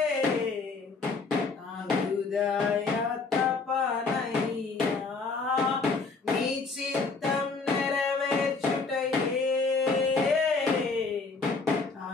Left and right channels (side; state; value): right; quieter; 4.3 dB